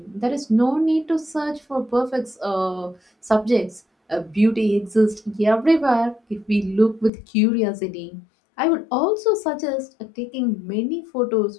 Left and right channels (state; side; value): drops out; right; at 7.1 s